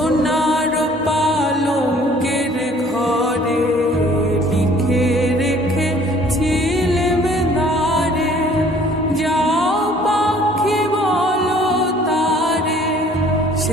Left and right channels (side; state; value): both; normal; correlation 0.55